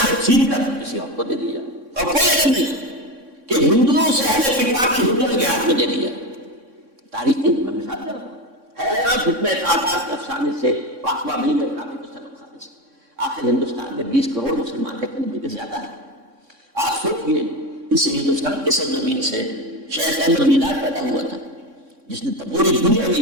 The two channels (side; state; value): left; late; 3.6 ms